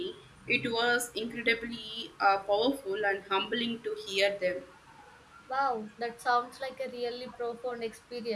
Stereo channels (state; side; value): identical; both; correlation 1.00